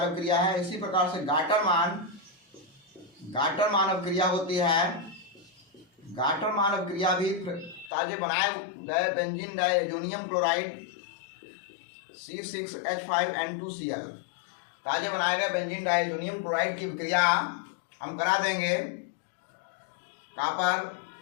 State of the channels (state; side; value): drops out; right; at 7.9 s